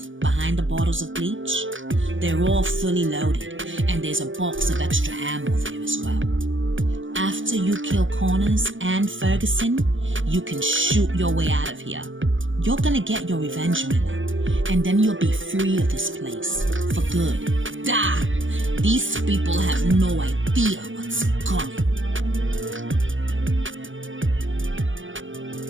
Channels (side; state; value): left; late; 0.56 ms